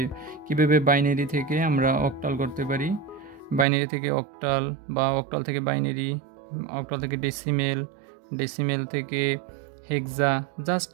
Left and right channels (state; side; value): drops out; left; at 3.7 s